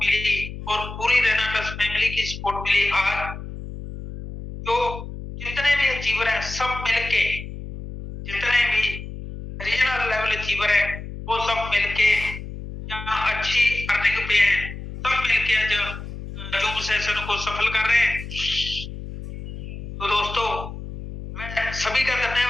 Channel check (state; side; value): noise; left; hum, 10 dB below the sound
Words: और पूरी रेनाटस फैमिली की सपोर्ट मिली। आज जो जितने भी अचीवर हैं सब मिलके जितने भी रीजनल अचीवर है वो सब मिलके जहाँ अच्छी अर्निंग पे हैं, सब मिलके आज जूम सेशन को सफल कर रहे हैं। तो दोस्तों मैं सभी का